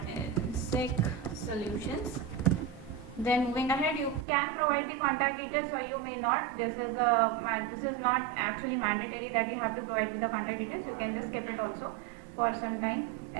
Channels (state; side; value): drops out; left; at 4.2 s